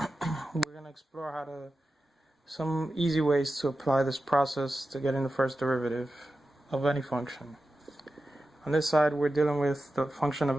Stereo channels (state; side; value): normal; both; correlation 0.92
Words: going to explore some easy ways to apply this process to getting the first derivative of any function. On this side we're dealing with the function of